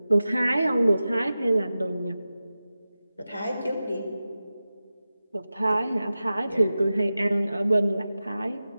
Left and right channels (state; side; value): inverted; both; correlation -0.94